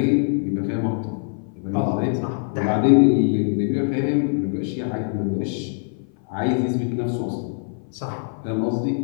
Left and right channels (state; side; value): silent; right; 56 dB below the other